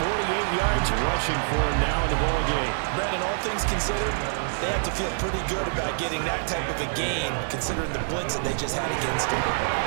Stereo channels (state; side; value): silent; left; 61 dB below the other